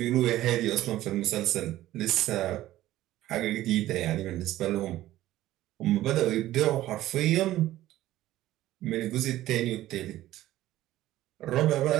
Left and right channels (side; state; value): left; quieter; 14.8 dB